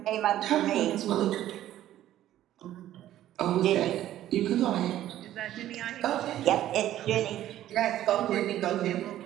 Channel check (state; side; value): quieter; left; 12.9 dB